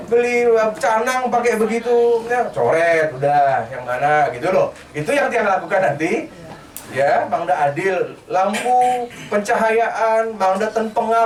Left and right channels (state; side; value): identical; both; correlation 1.00